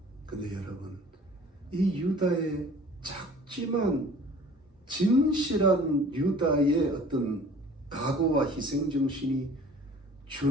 근데 여러분, 이 유다의 작지만 진실한 유다의 어떤 각오와 희생정신이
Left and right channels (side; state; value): both; normal; correlation 0.48